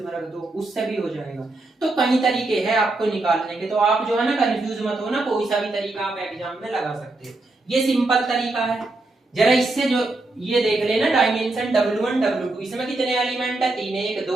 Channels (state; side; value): quieter; left; 3.0 dB